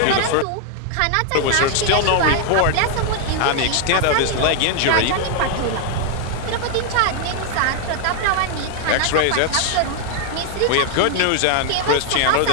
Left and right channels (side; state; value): both; different; correlation 0.00